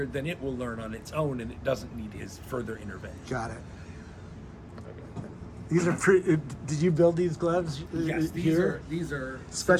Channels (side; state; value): both; identical; correlation 1.00